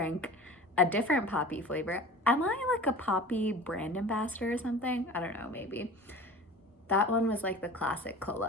a different poppy flavor. Am I like a poppy brand ambassador or something? I don't know, maybe. That one was like the classic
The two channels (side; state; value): both; normal; correlation 0.39